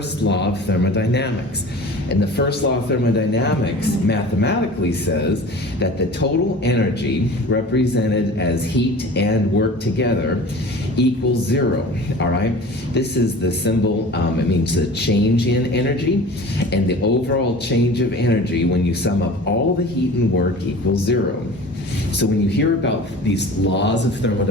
law of thermodynamics. And the first law of thermodynamics mathematically says that the total energy represented as heat and work together equals 0, all right? This is the symbol, it means the change in energy, and the overall change of energy when you sum up all the heat and work equals 0. So when you hear about these laws of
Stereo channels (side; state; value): both; normal; correlation 0.39